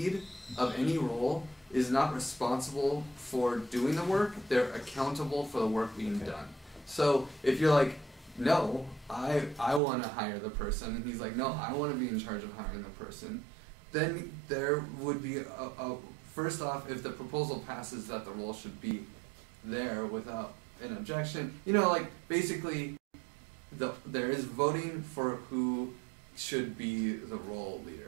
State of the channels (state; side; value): drops out; left; at 9.8 s